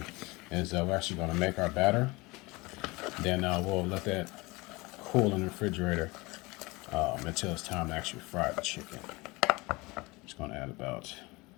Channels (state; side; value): quieter; right; 23.7 dB